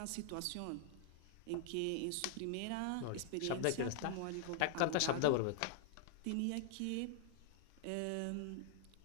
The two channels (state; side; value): different; both; correlation 0.00